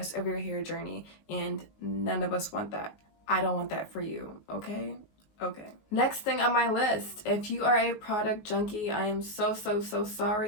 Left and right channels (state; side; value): late; right; 19 ms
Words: of your hair journey, and none of us want that. I don't want that for you, okay? Okay. Next thing on my list, if you are a product junkie, I am so